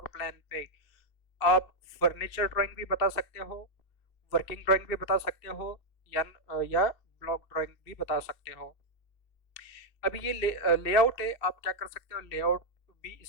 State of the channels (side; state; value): right; late; 2.6 ms